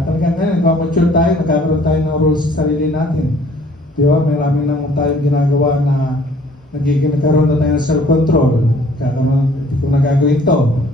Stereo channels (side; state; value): both; normal; correlation 0.56